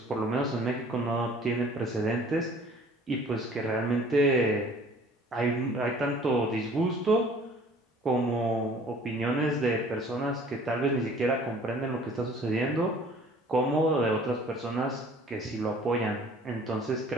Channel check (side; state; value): both; normal; correlation 0.52